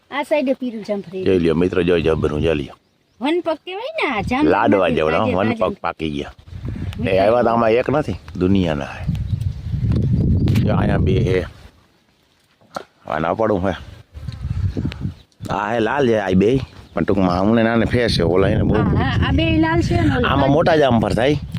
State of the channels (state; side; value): identical; both; correlation 1.00